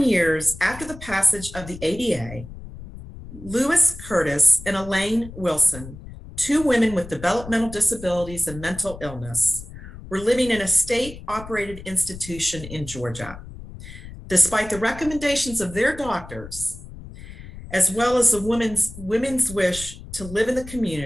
years after the passage of the ADA, Lewis Curtis and Elaine Wilson, 2 women with developmental disabilities and mental illness, were living in a state-operated institution in Georgia. Despite the recommendations of their doctors, as well as the women's wish to live in the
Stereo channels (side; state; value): left; noise; rumble, 14 dB below the sound